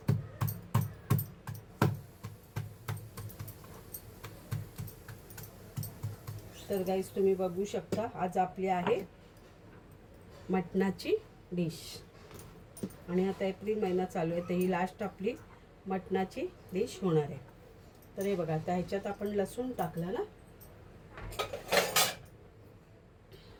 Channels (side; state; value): both; identical; correlation 1.00